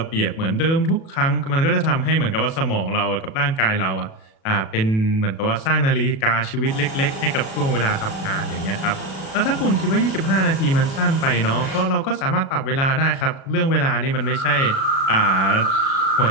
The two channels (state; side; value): late; right; 37 ms